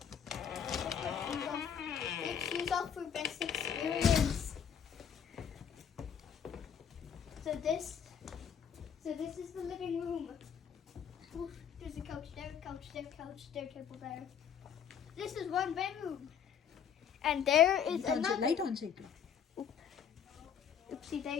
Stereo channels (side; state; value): right; quieter; 7.9 dB